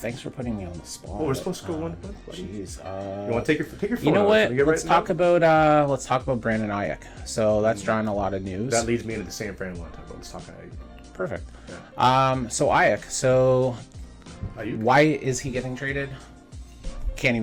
for putting me on the spot. Oh, we're supposed to go one. Jeez. You want to take your phone? You know out? what? Can we get Let's right talk now? about Brandon Ayuk. So that's drawing a lot of news. That leads me into the San Fran one. Let's talk about. Perfect. Yeah. So Ayuk. So Ayuk? why is he getting traded? Can't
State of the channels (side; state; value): both; identical; correlation 1.00